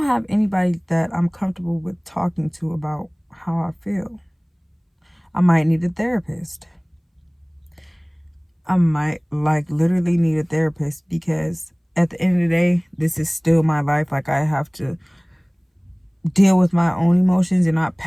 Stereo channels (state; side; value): identical; both; correlation 1.00